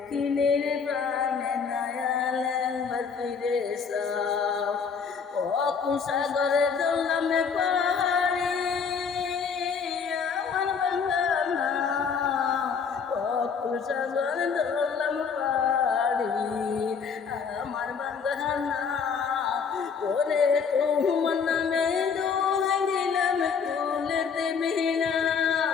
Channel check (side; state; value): right; quieter; 6.1 dB